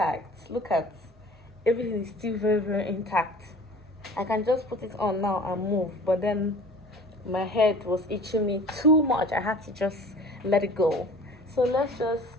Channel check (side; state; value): both; normal; correlation 0.45